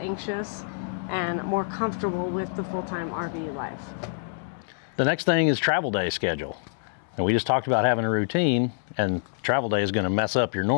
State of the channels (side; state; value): right; silent; digital silence